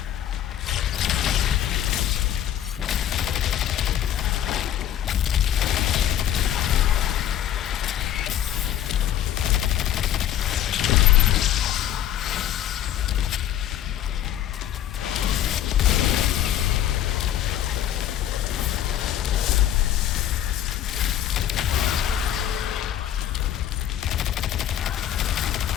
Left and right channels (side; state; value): right; quieter; 11.2 dB